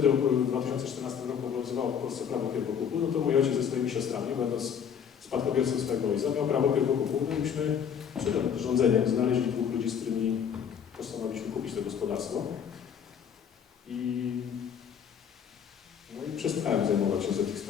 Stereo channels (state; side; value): quieter; right; 7.8 dB